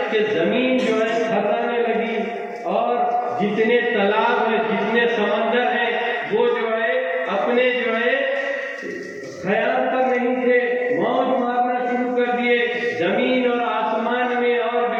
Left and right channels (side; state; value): both; identical; correlation 1.00